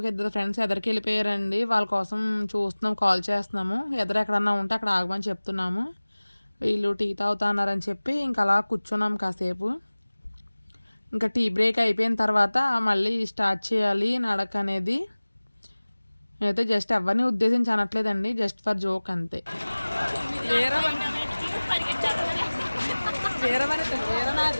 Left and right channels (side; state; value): both; inverted; correlation -1.00